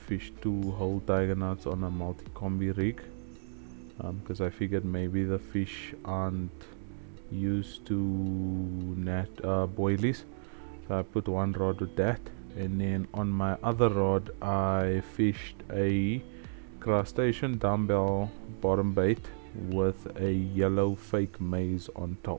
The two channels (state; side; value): silent; left; digital silence